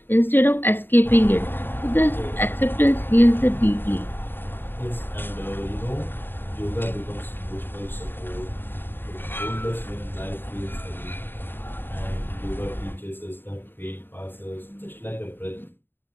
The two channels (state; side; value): late; right; 0.097 ms